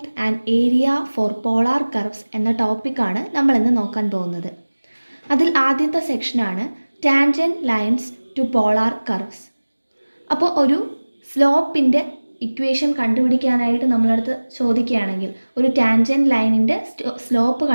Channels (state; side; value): inverted; both; correlation -1.00